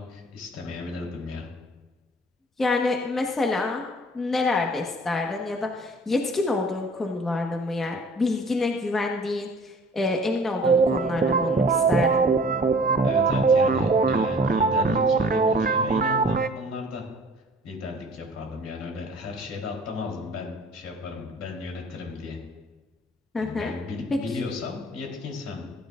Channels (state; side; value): normal; both; correlation 0.49